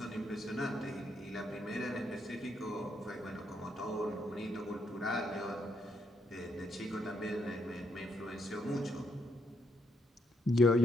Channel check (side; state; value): both; normal; correlation 0.75